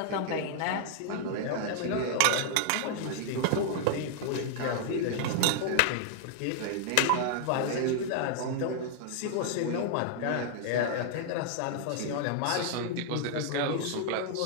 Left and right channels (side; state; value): both; different; correlation -0.01